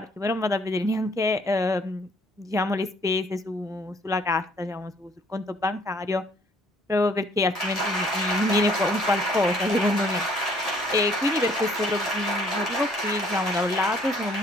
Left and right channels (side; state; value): both; normal; correlation 0.61